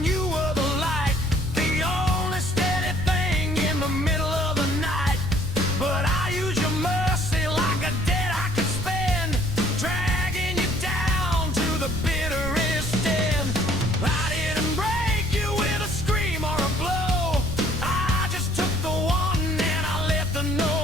you were the light, the only steady thing in the middle of the night. But I use your mercy like a debt I could spend, dragging you down to the bitterest end. I didn't break you with a scream or a blow, I just took the one and I let the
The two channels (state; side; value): noise; right; rumble, 7 dB below the sound